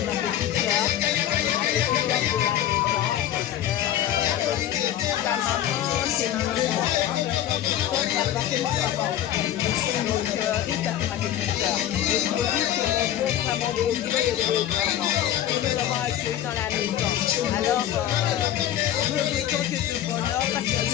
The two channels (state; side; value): quieter; right; 11.7 dB